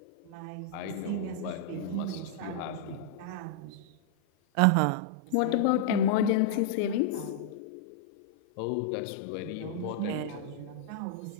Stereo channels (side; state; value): both; different; correlation -0.02